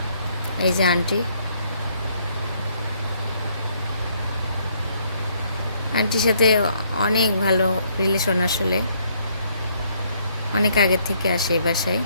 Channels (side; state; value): both; inverted; correlation -0.69